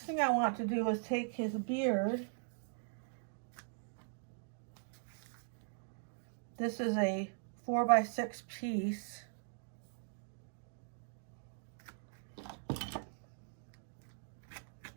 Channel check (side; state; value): left; silent; digital silence